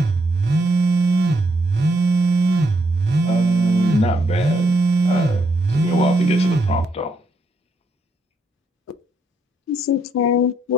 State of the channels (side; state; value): both; normal; correlation 0.75